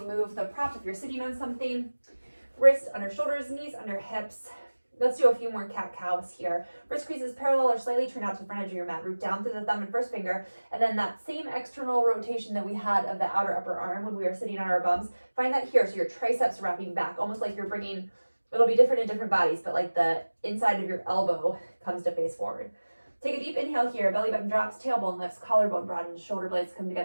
the prop if you're sitting on something. Wrists under shoulders, knees under hips. Let's do a few more cat-cows here. Wrist creases parallel or slightly turn out to the front edge of your mat. Root down through the thumb and first finger. And then that same external rotation that we had of the outer upper arm when we were sitting on our bums, find that here. So your triceps wrapping back, almost like you're bringing, it'll be different in different bodies, but like the inside of your elbow comes to face forward. Take a deep inhale here. Belly button drops, tailbone lifts, collarbone broadens, shoulder blades come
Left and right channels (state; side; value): inverted; both; correlation -1.00